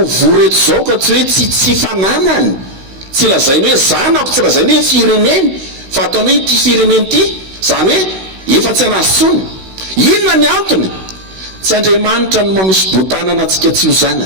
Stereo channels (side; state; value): left; late; 16 ms